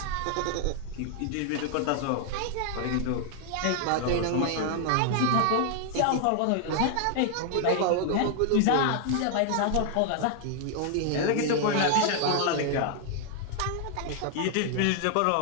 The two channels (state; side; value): different; both; correlation 0.00